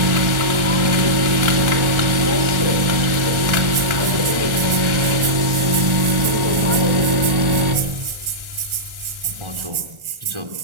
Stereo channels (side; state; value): left; late; 1.4 ms